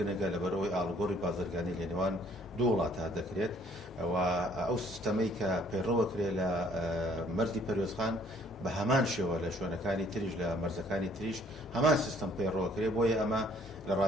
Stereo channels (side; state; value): both; normal; correlation 0.60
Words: لەبەرەوەی ئاڵگۆڕی بازرگانی لە نێوان دوو وڵاتە دەکرێت و ئەو سیستەمەی کە پەیڕەوە کرێت لە مەرزی پەروێزخان بە هەمان شێوە لە شوێنەکانی تریش لە مەرزەکانی تریش هەمان سیستەم پەیڕەوە کرێت بۆیە ئەمە لە